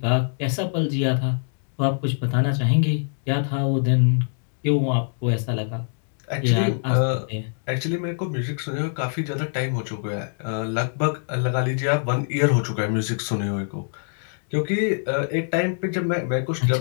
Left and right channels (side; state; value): right; silent; digital silence